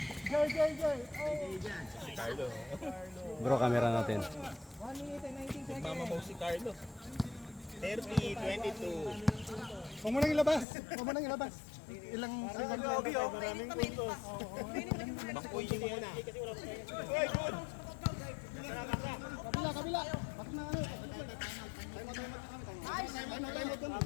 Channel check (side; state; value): right; drops out; at 10.7 s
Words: Carlo. Bro, camera natin. 1 minute and 19 seconds. Mama mo si Carlo. 30, 22. Huwag mo nang ilabas. Ilang second lang. Maraming puntos. Bangkuyin mo muna. Uy, good! Kabila. Bakit na ano?